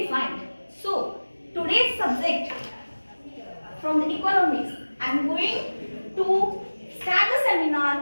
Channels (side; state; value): both; inverted; correlation -1.00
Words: defined. So today's subject from the economics, I am going to start the